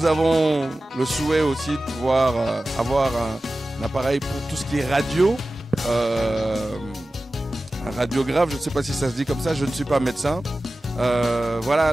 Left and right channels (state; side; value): normal; both; correlation 0.95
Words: avons le souhait aussi de pouvoir avoir un appareil pour tout ce qui est radio, un radiographe, je ne sais pas si ça se dit comme ça, je ne suis pas médecin. Voilà